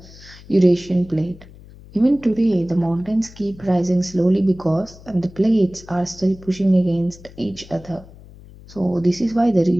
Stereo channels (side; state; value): left; noise; hum, 20 dB below the sound